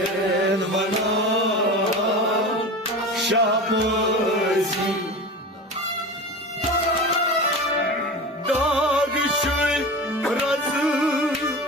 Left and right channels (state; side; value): normal; both; correlation 0.30